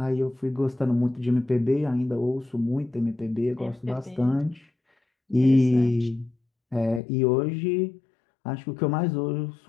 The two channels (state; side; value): drops out; right; at 7.0 s